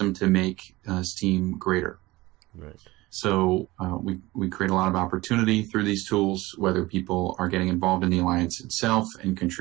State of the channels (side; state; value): left; quieter; 19.9 dB